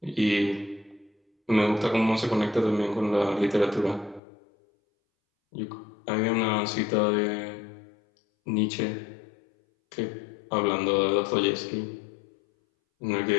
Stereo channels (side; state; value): right; drops out; at 4.2 s